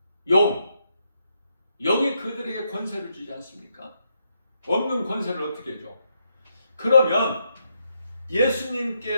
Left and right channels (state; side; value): inverted; both; correlation -0.79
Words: 용이 그들에게 권세를 주지 않습니까? 없는 권세를 어떻게 줘? 그러면